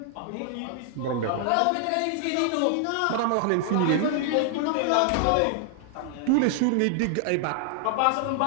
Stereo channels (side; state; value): both; different; correlation 0.00